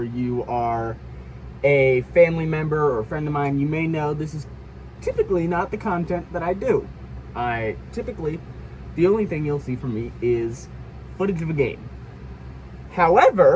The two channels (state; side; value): identical; both; correlation 1.00